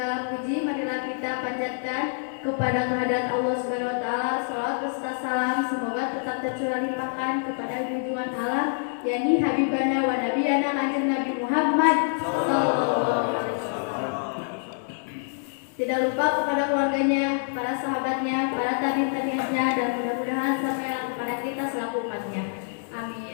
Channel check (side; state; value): right; silent; digital silence